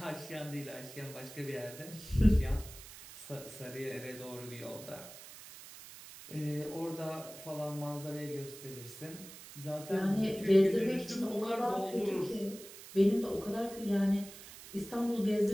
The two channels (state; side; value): noise; right; hiss, 15 dB below the sound